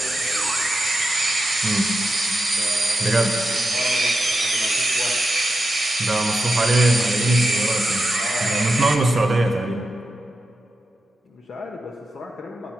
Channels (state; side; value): normal; both; correlation 0.89